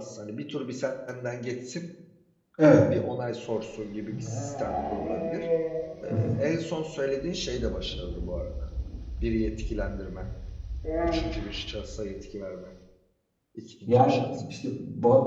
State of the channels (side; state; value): both; identical; correlation 1.00